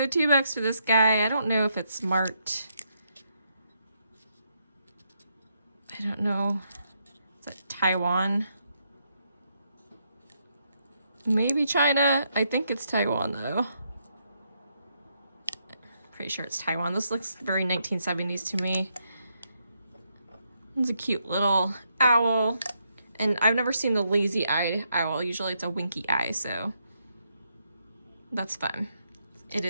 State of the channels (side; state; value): both; inverted; correlation -0.78